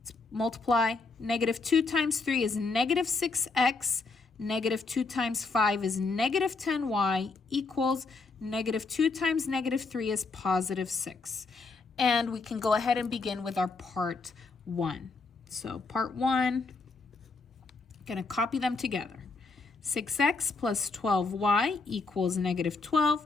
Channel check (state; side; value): quieter; right; 4.0 dB